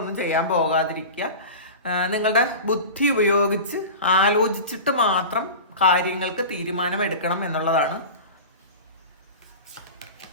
ചെയ്യാൻ പോകാതിരിക്കുക. നിങ്ങളുടെ ബുദ്ധി ഉപയോഗിച്ച് ആലോചിച്ചിട്ട് മാത്രം കാര്യങ്ങൾക്ക് തീരുമാനമെടുക്കണം എന്നുള്ളതാണ്.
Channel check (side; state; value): both; inverted; correlation -0.31